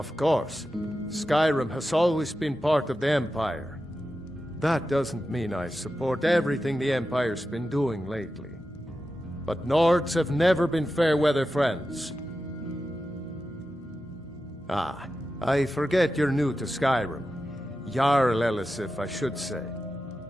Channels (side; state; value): both; normal; correlation 0.91